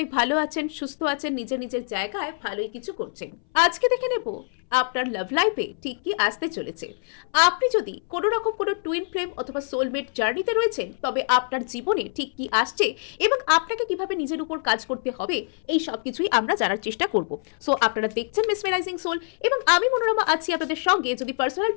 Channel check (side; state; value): right; silent; 60 dB below the other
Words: ভালো আছেন, সুস্থ আছেন, নিজের নিজের জায়গায় ভালোই কিছু করছেন। আজকে দেখে নেব আপনার লাভ লাইফে ঠিক কি আসতে চলেছে। আপনি যদি কোনো রকম কোনো টুইন ফ্লেম অথবা সোলমেট জার্নিতে রয়েছেন, তবে আপনার জীবনে ঠিক কি আসছে এবং আপনাকে কিভাবে নিজের উপর কাজ করতে হবে, এই সব কিছুই আমরা জানার চেষ্টা করব। সো আপনারা দেখছেন মেসমেরাইজিং সোল এবং আমি মনোরমা আছি আপনাদের সঙ্গে। যদি পার্সোনাল